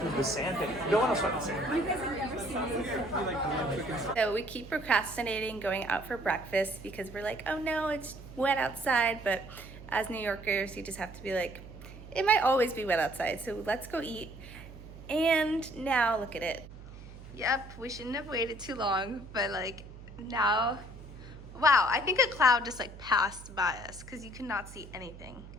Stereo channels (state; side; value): noise; right; hum, 15 dB below the sound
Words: The sand thing. No one else went the sand. You guys have never seen this. So we keep procrastinating going out for breakfast because we're like, oh no, it's wet outside. But as New Yorkers, you just have to be like, it might always be wet outside, so let's go eat. And now look at it. Yep, we shouldn't have waited too long, but like now, wow, I think a cloud just like passed by us because you could not see anything.